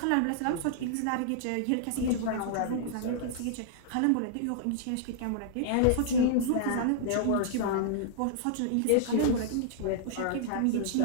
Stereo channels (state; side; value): different; both; correlation -0.01